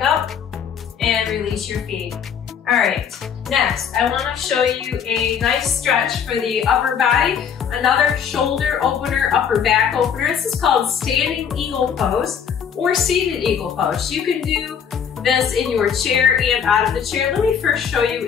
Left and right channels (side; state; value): right; quieter; 7.6 dB